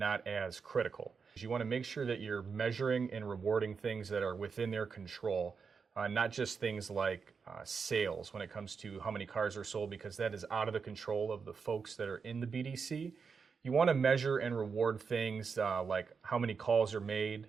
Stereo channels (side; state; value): left; quieter; 5.6 dB